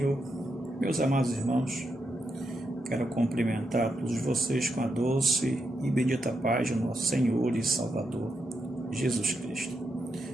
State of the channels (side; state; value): both; normal; correlation 0.83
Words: Meus amados irmãos, quero cumprimentar todos vocês com a doce e bendita paz do nosso Senhor e Salvador, Jesus Cristo.